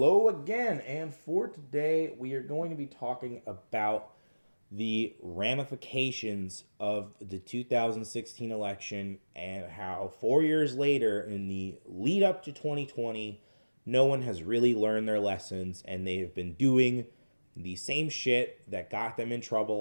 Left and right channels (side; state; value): both; inverted; correlation -1.00